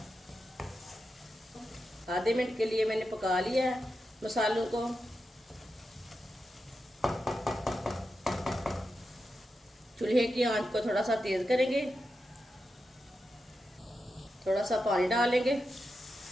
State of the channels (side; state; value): both; normal; correlation 0.89